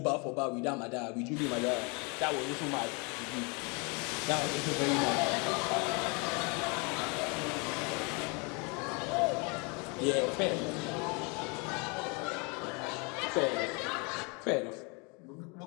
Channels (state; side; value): quieter; right; 31.6 dB